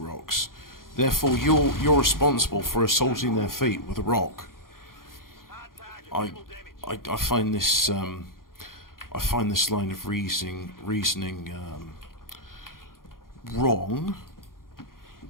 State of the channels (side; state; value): right; late; 0.91 ms